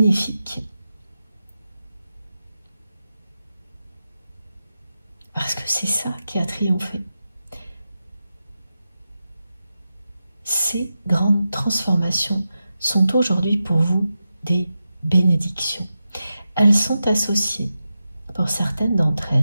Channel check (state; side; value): inverted; both; correlation -0.91